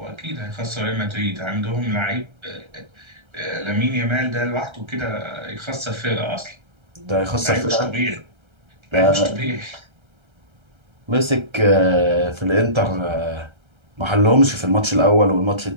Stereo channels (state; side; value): late; left; 1.3 ms